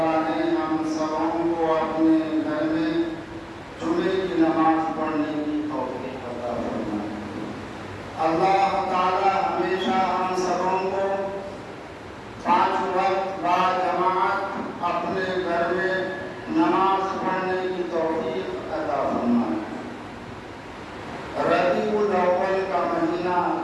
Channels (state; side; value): identical; both; correlation 1.00